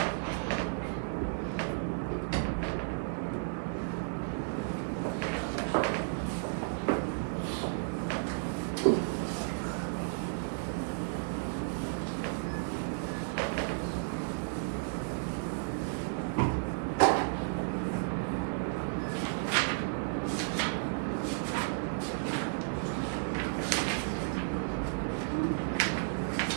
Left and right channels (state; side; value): silent; left; digital silence